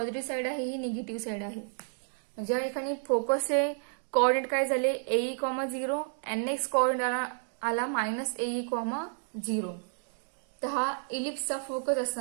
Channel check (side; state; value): left; silent; 57 dB below the other